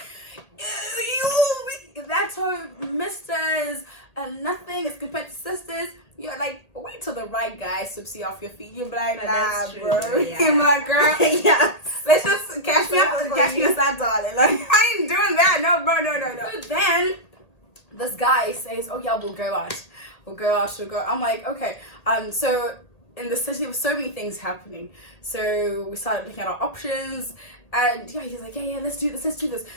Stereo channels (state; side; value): late; right; 1.8 ms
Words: that's how misters and nothing is compared to sisters. You're like, wait till the right guy sweeps you off your feet. You're like, nah, That's true, bro. yeah. You're my girl. Yes. Let's just catch me outside, darling. Like, I ain't doing that. No, bro, no. So then, this guy says, oh yeah, we'll go out. I'm like, okay. So in the city, there were so many things happening. So we started looking at our options. And yeah, he's like, yeah, let's do this.